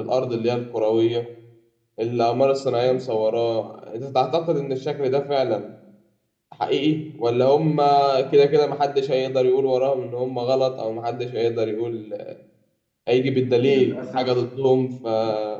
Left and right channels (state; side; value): identical; both; correlation 1.00